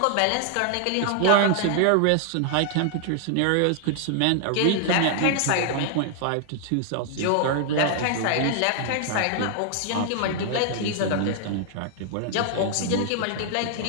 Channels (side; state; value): both; different; correlation 0.00